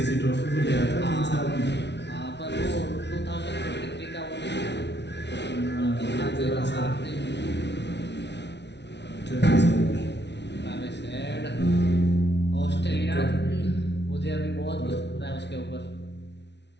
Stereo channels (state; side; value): late; right; 0.50 ms